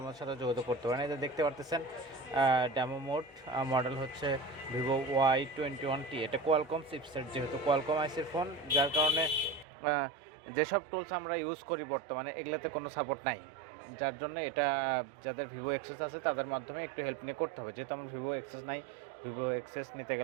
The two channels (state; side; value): drops out; left; at 9.7 s